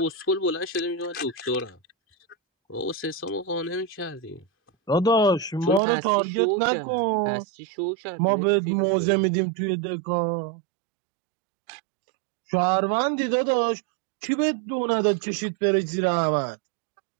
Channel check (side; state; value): left; drops out; at 5.8 s